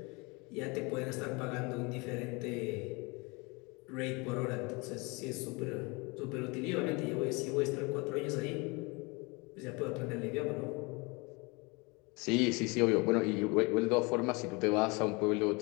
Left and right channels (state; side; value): quieter; right; 27.6 dB